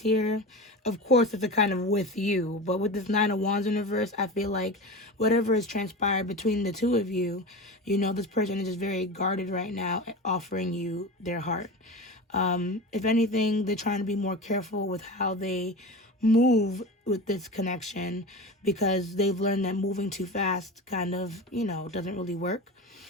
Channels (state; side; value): normal; both; correlation 0.28